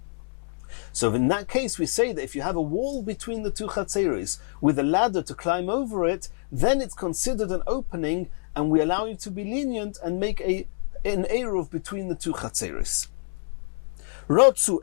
So in that case, we say that if you have a wall between the two chatzeris with a ladder to climb over it, then it's considered an opening, and we allow you to be lenient and make an eruv between the two chatzeris. Rotzu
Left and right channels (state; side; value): silent; right; digital silence